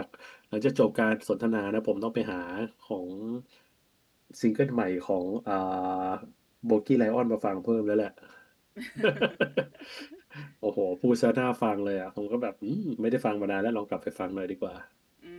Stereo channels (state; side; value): identical; both; correlation 1.00